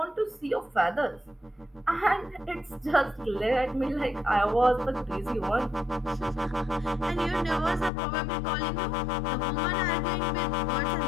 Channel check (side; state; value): right; drops out; at 7.9 s